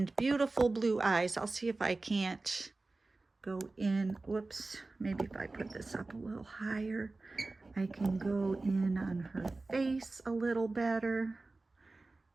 beautiful blue eyes. I'll see if I can't go in. Whoops, maybe if I put this up a little higher, I can go in on her face a little better.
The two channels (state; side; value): quieter; left; 3.4 dB